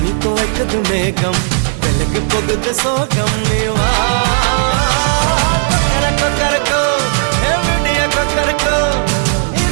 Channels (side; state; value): left; silent; 71 dB below the other